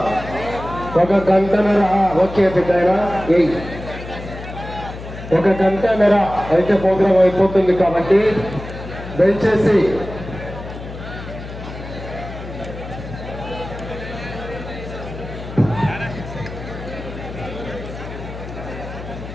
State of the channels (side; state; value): left; noise; hum, 11 dB below the sound